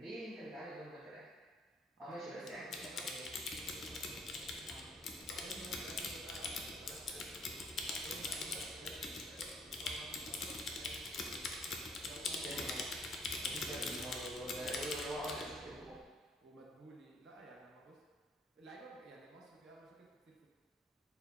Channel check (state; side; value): normal; both; correlation 0.62